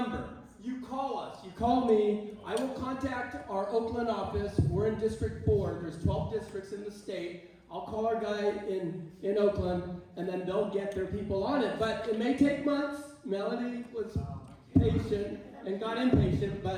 You call us, you call me, I will contact our Oakland office. We're in District 4, there's 12 districts in the state. I'll call our guy in Oakland, and then they'll get their people on it. But it may take months. Melody was patient and got impatient,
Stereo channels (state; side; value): identical; both; correlation 1.00